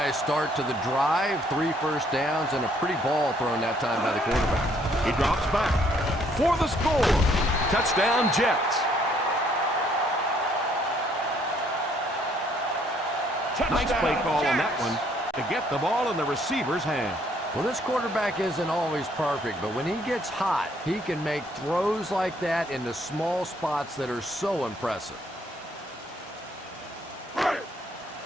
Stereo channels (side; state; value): both; normal; correlation 0.66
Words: start to the drive. 3 first downs and a pretty ball thrown that time by the quarterback. He drops back for the score. Touchdown, Jets. Nice play call on that one to get the ball in the receiver's hand. Well, this quarterback isn't always perfect, but when he gets hot, he can make throws like that into small spots that are so impressive.